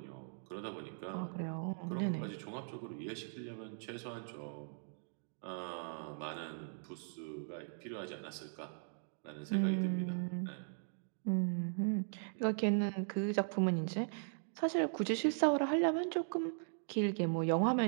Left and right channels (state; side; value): silent; left; digital silence